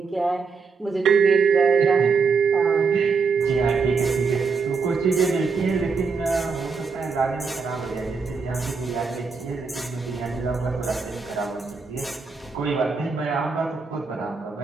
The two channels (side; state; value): left; quieter; 5.0 dB